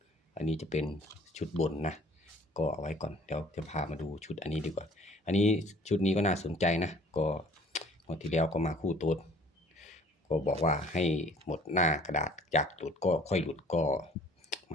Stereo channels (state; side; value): normal; both; correlation 0.53